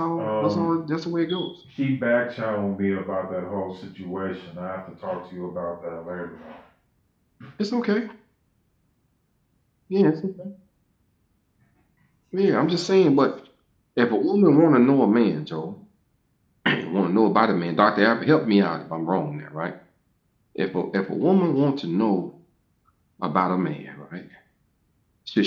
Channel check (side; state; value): both; identical; correlation 1.00